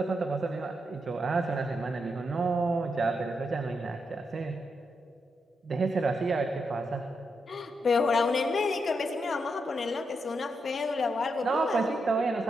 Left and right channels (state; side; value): normal; both; correlation 0.83